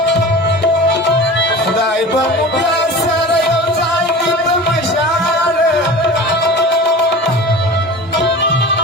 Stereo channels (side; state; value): both; normal; correlation 0.36